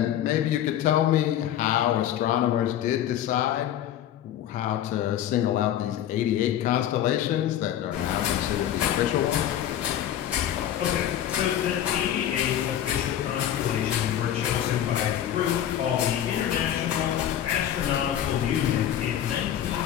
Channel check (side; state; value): right; quieter; 11.0 dB